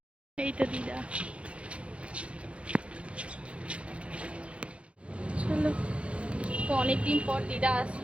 এই তো দিদা, চলো। তো অনেকদিন পর দিদা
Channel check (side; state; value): left; late; 0.060 ms